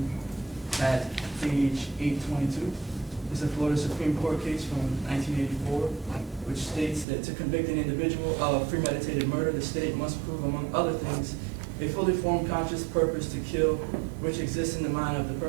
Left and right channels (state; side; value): drops out; left; at 7.1 s